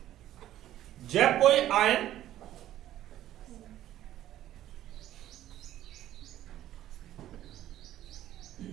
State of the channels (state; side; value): quieter; left; 13.0 dB